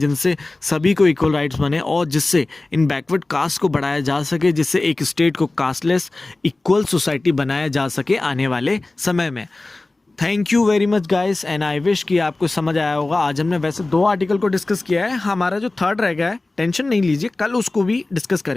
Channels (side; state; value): right; quieter; 3.1 dB